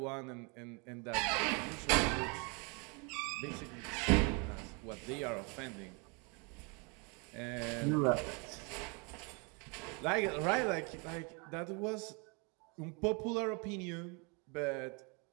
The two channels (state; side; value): quieter; left; 32.5 dB